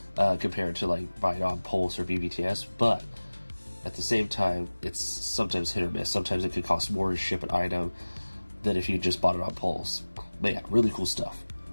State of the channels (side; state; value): both; inverted; correlation -1.00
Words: compared to like buying on Pulse or BBTS, but at the same time, it's sometimes hit or miss. Sometimes it could cost more to ship an item than if you just bought it on Pulse. But yeah, really cool stuff.